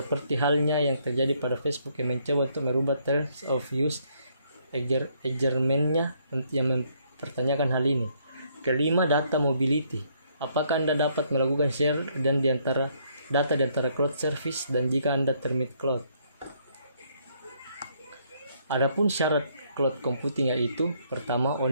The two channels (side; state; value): both; inverted; correlation -0.70